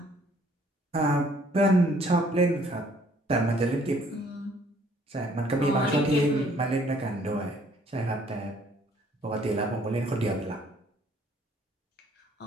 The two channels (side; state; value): both; normal; correlation 0.61